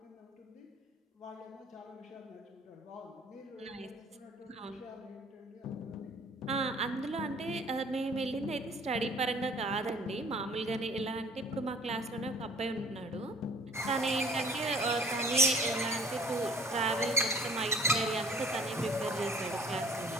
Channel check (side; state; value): both; normal; correlation 0.52